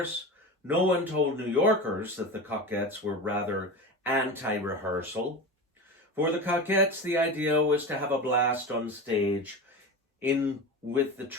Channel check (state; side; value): normal; both; correlation 0.27